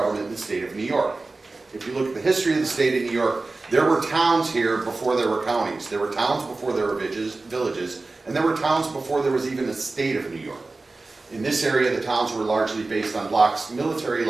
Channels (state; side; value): quieter; left; 3.4 dB